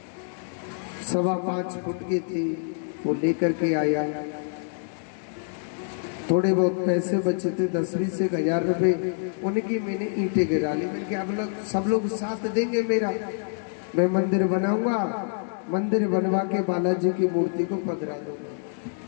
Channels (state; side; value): silent; right; digital silence